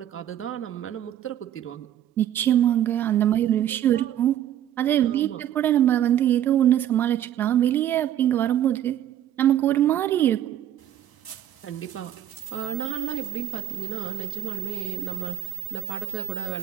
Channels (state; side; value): quieter; left; 11.3 dB